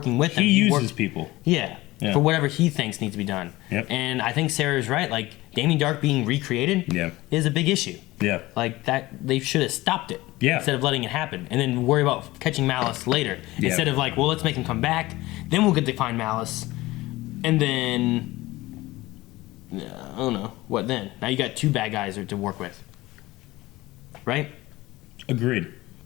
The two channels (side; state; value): right; quieter; 19.0 dB